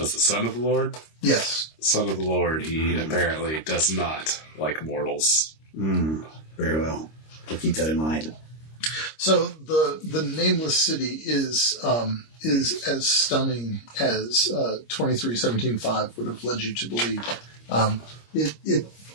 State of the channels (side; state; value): right; late; 26 ms